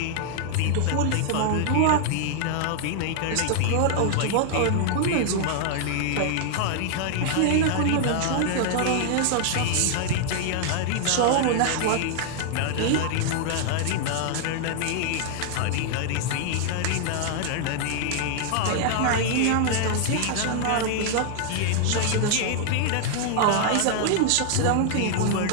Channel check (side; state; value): both; different; correlation -0.01